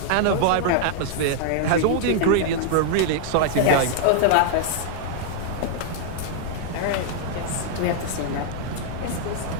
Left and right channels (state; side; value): different; both; correlation 0.00